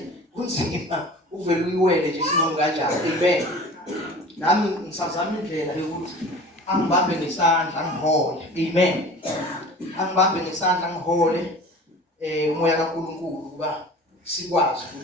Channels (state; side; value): normal; both; correlation 0.41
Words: Kunzima uvela uyiwele nje sinomu kanjani. Amen. Nami ngisazama indlela yokuthi angibambe ngesandla ngihole. Amen. Angibambe ngesandla ngihole umoya kaNkulunkulu kuba sikwazi